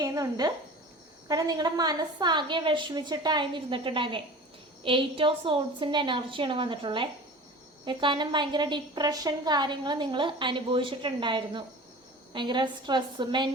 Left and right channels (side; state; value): both; normal; correlation 0.38